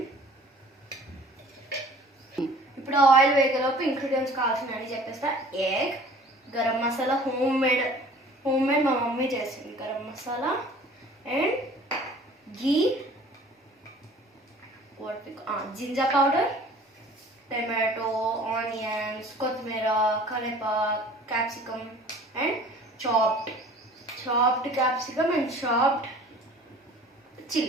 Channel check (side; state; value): both; normal; correlation 0.48